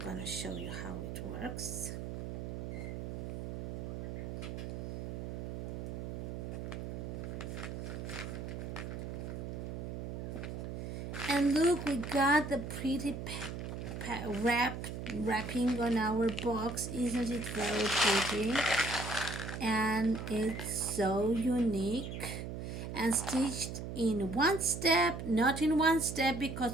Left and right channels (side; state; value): right; noise; hum, 6 dB below the sound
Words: show you how it works. And look, we got the pretty wrapping on our box. Isn't it very pretty? And it's so unique and stitched in one step, not in one step